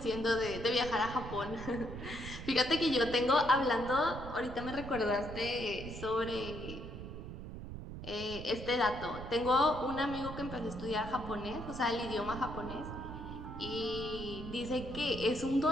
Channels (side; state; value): right; noise; rumble, 9 dB below the sound